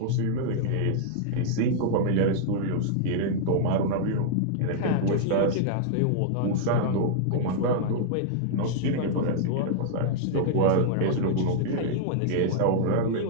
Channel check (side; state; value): both; different; correlation -0.01